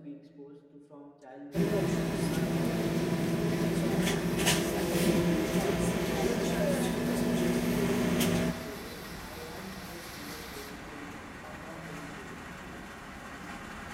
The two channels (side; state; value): both; identical; correlation 1.00